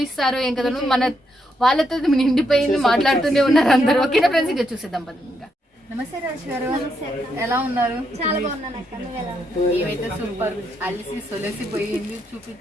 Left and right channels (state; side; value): normal; both; correlation 0.79